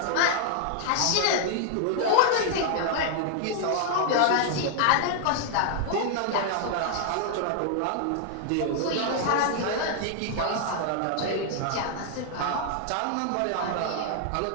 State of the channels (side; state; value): both; different; correlation 0.00